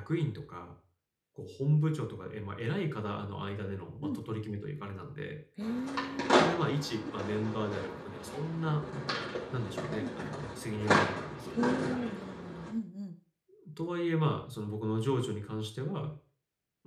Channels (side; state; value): both; identical; correlation 1.00